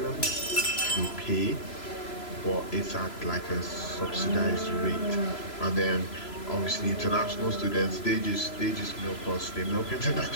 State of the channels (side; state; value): right; late; 3.0 ms